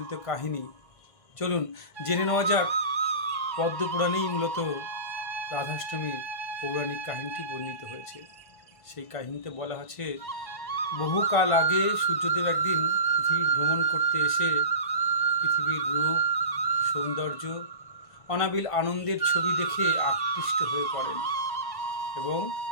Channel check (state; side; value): late; right; 1.5 ms